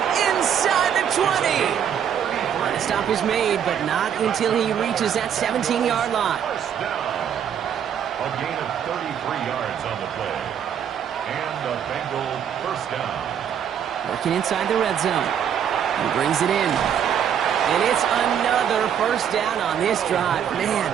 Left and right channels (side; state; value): left; quieter; 8.7 dB